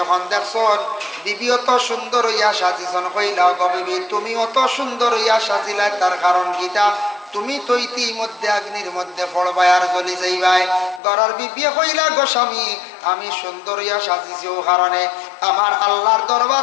দেখছন বিবি অত সুন্দর হইয়া সাজিছন, কইলা গো বিবি তুমি অত সুন্দর হইয়া সাজিলা তার কারণ কিটা? তুমি তো ইতিমধ্যে আগ্নির মধ্যে পড়বাই আর জ্বলি যাইবাই। গরর বিবিয়ে কইলা গো স্বামী আমি সুন্দর হইয়া সাজিছি ও কারণে আমার আল্লাহর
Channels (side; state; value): right; drops out; at 11.0 s